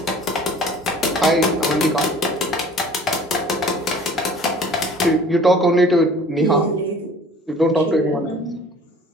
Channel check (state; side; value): normal; both; correlation 0.48